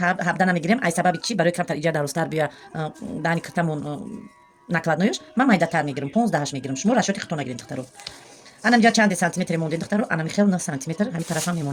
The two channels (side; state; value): both; identical; correlation 1.00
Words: намегирем ай сабаби чӣ барои камтар иҷа дарозтар бия даҳани киртамон накладноёш ман майдатар мегирем 15 мегирем шумо расчёти худтон нагирем духтаро ана инҷа чанде сантиметре мондем духтаро ана михел 9 сантиметр ҳамин тарафам